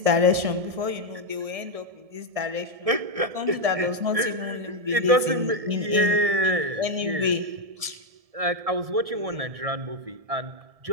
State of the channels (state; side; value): late; left; 1.7 ms